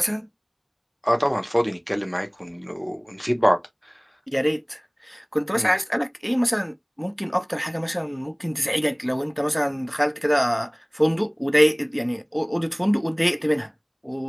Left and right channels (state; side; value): identical; both; correlation 1.00